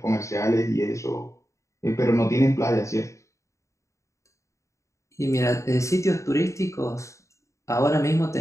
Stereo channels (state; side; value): late; right; 0.15 ms